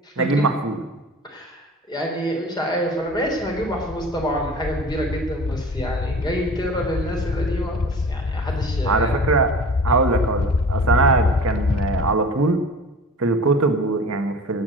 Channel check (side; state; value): both; normal; correlation 0.40